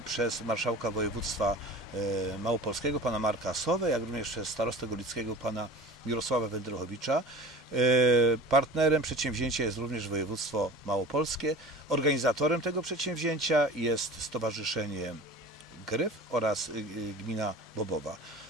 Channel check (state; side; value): normal; both; correlation 0.38